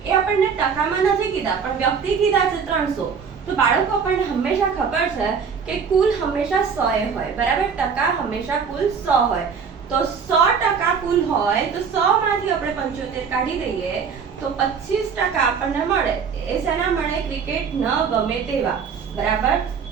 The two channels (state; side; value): quieter; left; 6.3 dB